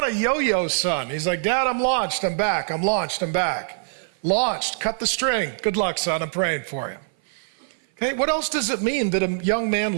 a yo-yo son. He's like, Dad, I'm launched. I'm back. I'm launched. I'm back. Launched. Cut the string. Good luck, son. I'm praying for you. Okay. What else does it mean that a young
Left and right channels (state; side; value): silent; left; 57 dB below the other